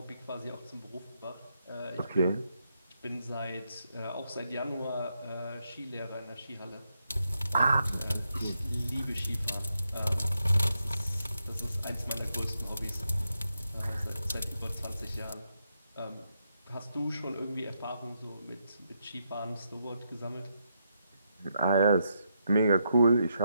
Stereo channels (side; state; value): both; inverted; correlation -0.81